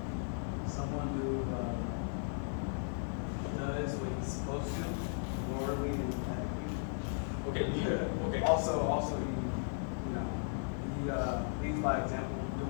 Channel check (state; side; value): silent; right; digital silence